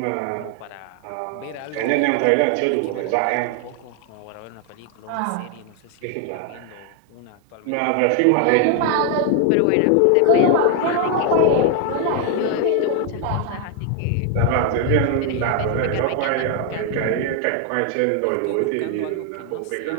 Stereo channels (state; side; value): different; both; correlation 0.00